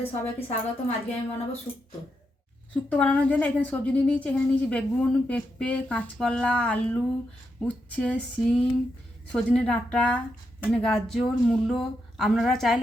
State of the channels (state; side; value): normal; both; correlation 0.83